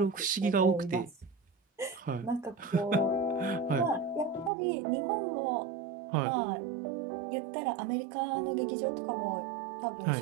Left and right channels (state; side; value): drops out; left; at 4.5 s